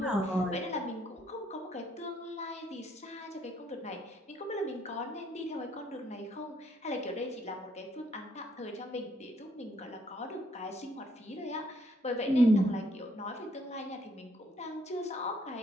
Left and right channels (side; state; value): both; normal; correlation 0.68